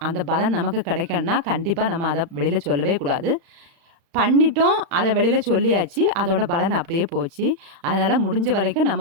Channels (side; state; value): left; late; 36 ms